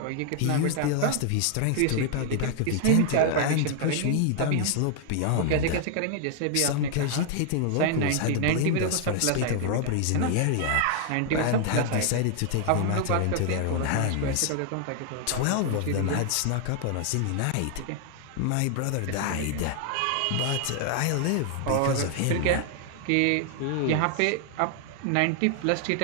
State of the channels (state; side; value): different; both; correlation 0.00